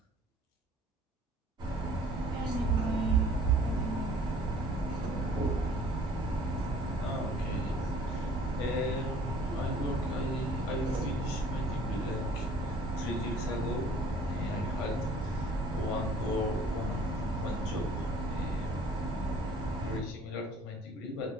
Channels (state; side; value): normal; both; correlation 0.54